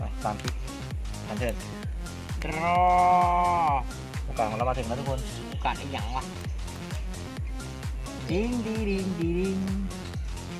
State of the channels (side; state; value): both; identical; correlation 1.00